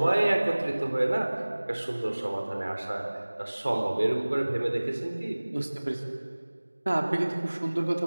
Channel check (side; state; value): both; inverted; correlation -1.00